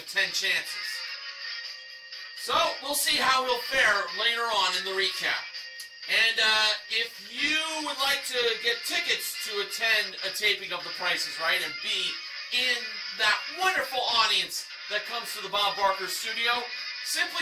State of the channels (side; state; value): both; identical; correlation 1.00